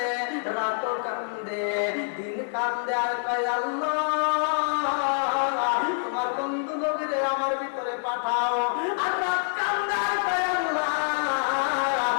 রাত কান্দে, দিন কান্দে আর কয় আল্লাহ তোমার বন্ধু নবীরে আমার ভিতরে পাঠাও, আর রাত কান্দে আর কয় আল্লাহ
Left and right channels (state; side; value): silent; right; 61 dB below the other